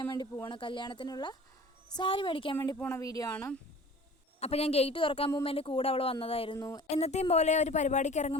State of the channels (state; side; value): normal; both; correlation 0.44